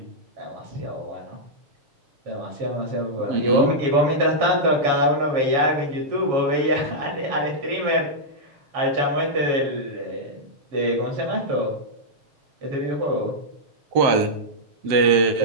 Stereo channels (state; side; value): late; left; 7.2 ms